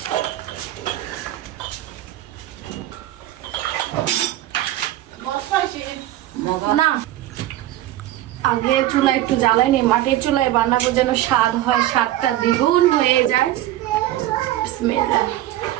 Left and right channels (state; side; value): quieter; left; 14.4 dB